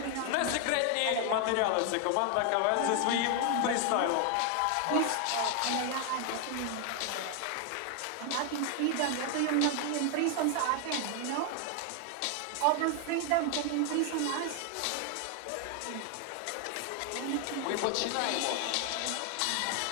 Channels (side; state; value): both; different; correlation 0.00